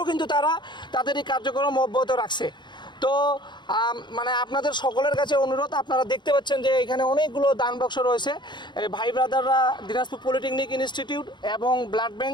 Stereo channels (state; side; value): late; right; 0.22 ms